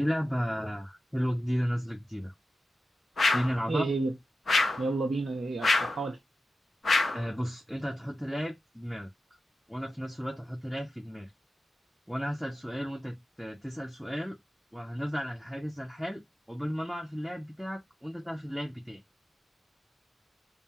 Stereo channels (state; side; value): normal; both; correlation 0.92